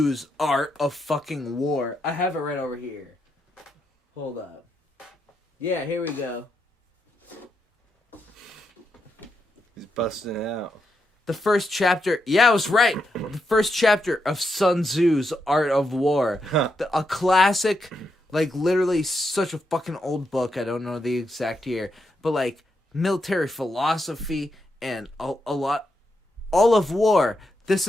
Art of Fucking War. I have it right over here. Hold up. Yeah, here we go. He's busting it out. The first chapter, yeah, I was right. The first chapter of Sun Tzu's Art of War. A classic, like literally such a fucking old book. I don't know the exact year, but like military philosophy and a lot, all of war. This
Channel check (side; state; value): both; normal; correlation 0.83